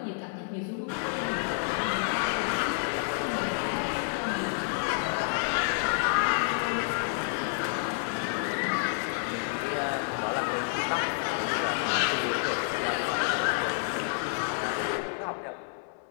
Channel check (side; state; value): right; silent; 58 dB below the other